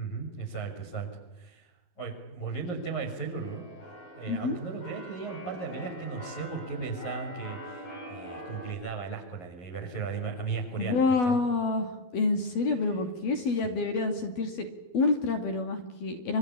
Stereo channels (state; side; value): late; right; 12 ms